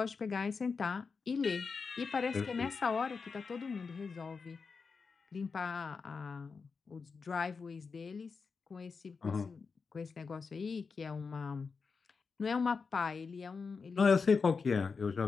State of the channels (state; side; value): quieter; right; 5.0 dB